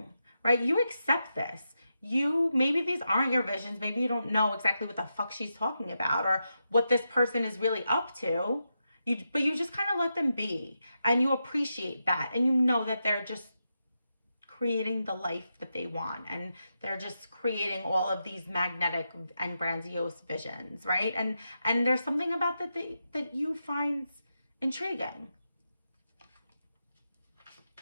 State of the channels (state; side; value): inverted; both; correlation -0.86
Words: right? You accept this. Maybe these aren't your visions. Maybe you don't know exactly what the fuck she's talking about or what this person is really up to. But you just kind of let them be, and you appreciate that, and you know that they're just creating the life that they want, and they're just creating all of these magnetic and grandiose visions, right? And there's something about that you find intriguing.